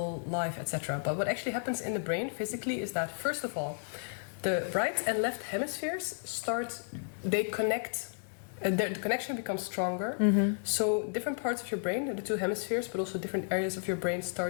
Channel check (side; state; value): right; silent; digital silence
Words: life, etc. But what actually happens in the brain physically is that, first of all, the right and left hemispheres they connect, the connection becomes stronger. So different parts of your brain, the two hemispheres, but also different areas of your brain